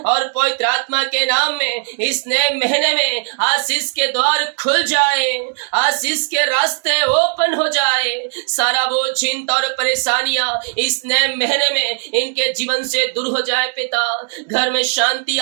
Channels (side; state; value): left; silent; 68 dB below the other